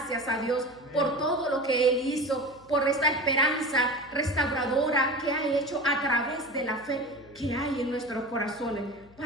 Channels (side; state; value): left; noise; hum, 26 dB below the sound